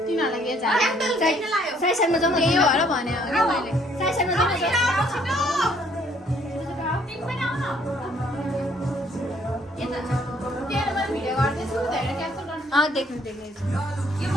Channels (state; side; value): normal; both; correlation 0.64